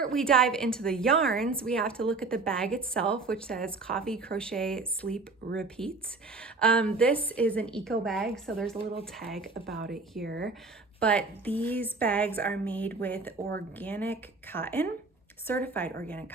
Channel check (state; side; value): quieter; left; 3.8 dB